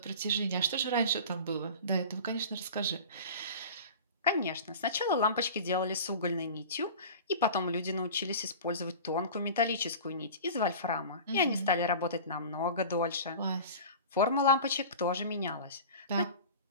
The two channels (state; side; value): inverted; both; correlation -0.36